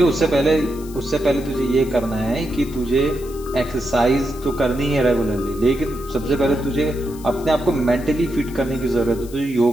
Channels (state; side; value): noise; left; hiss, 20 dB below the sound